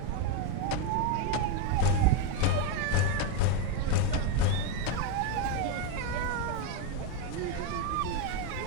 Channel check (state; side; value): different; both; correlation 0.03